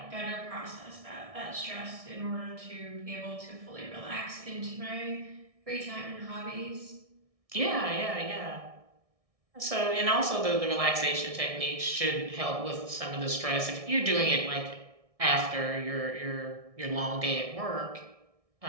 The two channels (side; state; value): left; late; 1.6 ms